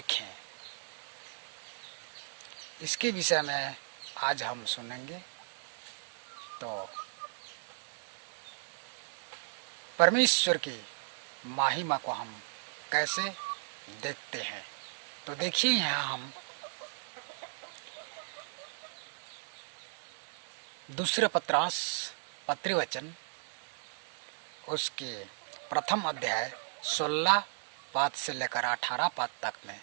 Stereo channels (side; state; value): left; silent; 54 dB below the other